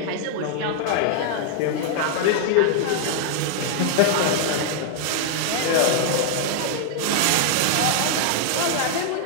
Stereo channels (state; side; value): different; both; correlation 0.00